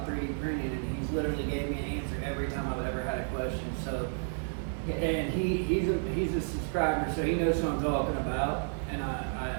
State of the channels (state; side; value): silent; left; 57 dB below the other